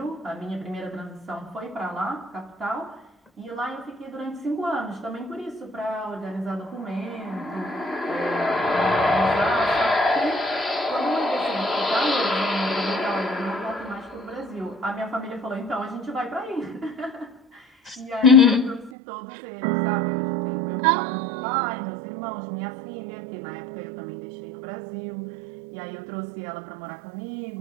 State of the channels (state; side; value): drops out; left; at 18.9 s